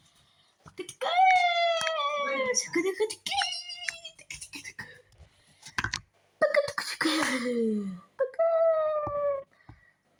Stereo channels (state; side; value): identical; both; correlation 1.00